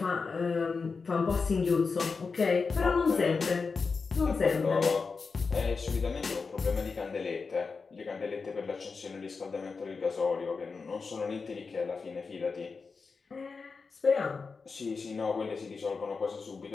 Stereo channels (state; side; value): quieter; right; 4.7 dB